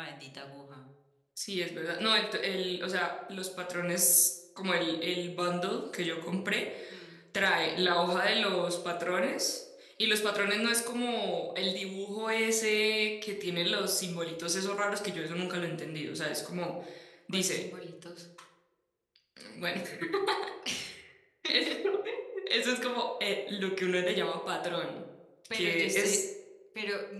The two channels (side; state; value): both; identical; correlation 1.00